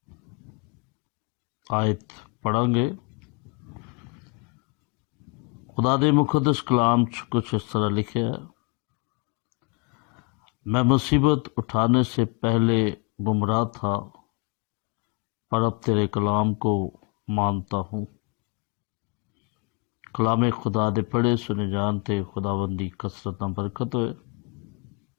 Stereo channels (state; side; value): quieter; right; 31.9 dB